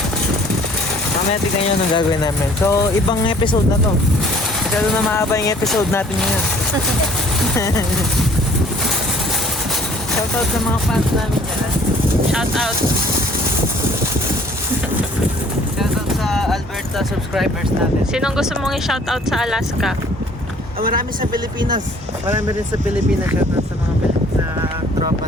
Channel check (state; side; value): normal; both; correlation 0.56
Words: Mamaya tignan nyo anong gagawin namin. So, ibang episode na to. Masyado na mahaba yung episode natin ngayon. Shoutout sa mga fans namin dyan. Shout out! Shoutout sa Alberta subscribers natin. Sinong gusto mong i-shout out sa Alaska? Marami sa Pilipinas. Marami rin sa Pilipinas. Shoutout sa mga sa